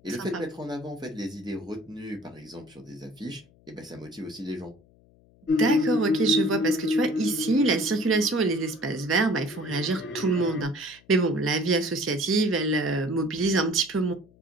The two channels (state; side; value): noise; left; hum, 29 dB below the sound